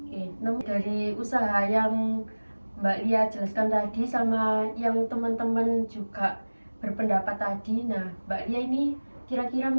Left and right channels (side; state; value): both; inverted; correlation -1.00